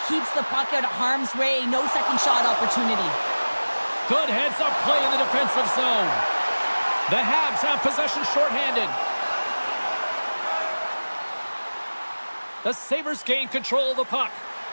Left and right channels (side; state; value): both; inverted; correlation -1.00